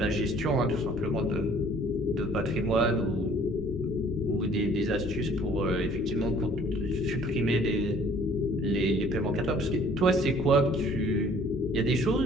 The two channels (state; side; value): normal; both; correlation 0.55